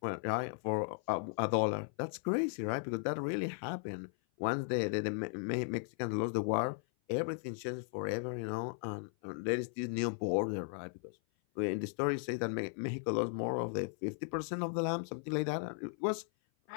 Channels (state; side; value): silent; right; 53 dB below the other